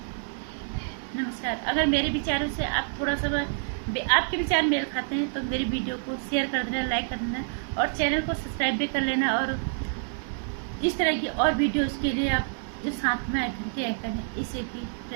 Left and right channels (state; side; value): silent; left; 60 dB below the other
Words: नमस्कार। अगर मेरे विचारों से आप थोड़ा सा आपके विचार मेल खाते हैं तो मेरी वीडियो को शेयर कर देना, लाइक कर देना, और चैनल को सब्सक्राइब भी कर लेना। और इस तरह की और वीडियोस के लिए आप जो साथ में घंटे आइकन है, इसे भी